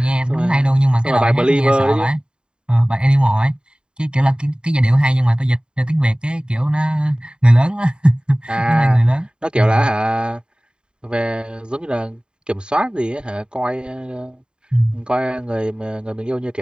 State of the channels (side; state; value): left; late; 0.050 ms